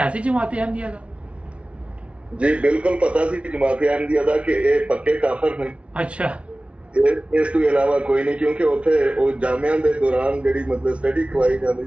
सी जमात अहमदिया का? जी बिल्कुल पता सी जमात अहमदिया का कि ये पक्के काफिर ने। अच्छा, ਇਸ ਤੋਂ ਇਲਾਵਾ ਕੋਈ ਨਹੀਂ, ਕਿਉਂਕਿ ਉੱਥੇ ਉਹ ਜਾਮਿਆਂ ਦੇ ਦੌਰਾਨ ਜਿਹੜੀ ਮਤਲਬ ਸਟੱਡੀ ਕਰਵਾਈ ਜਾਂਦੀ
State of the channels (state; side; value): late; left; 0.061 ms